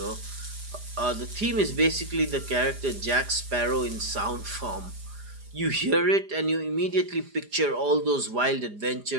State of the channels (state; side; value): late; left; 4.9 ms